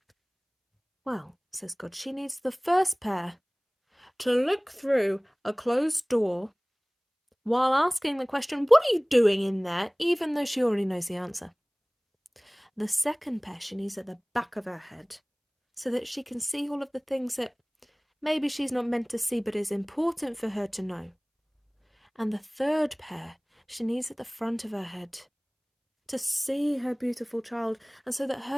"Well," says God, "she needs the first pair to look through a closed door while asking the question, 'What are you doing in there?' even though she already knows the answer. The second pair she needs at the back of her head so that she can see all of the things that maybe she's not meant to see but is important for her to know. And the third pair she needs at the front of her head to see her beautiful child and so that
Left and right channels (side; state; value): both; identical; correlation 1.00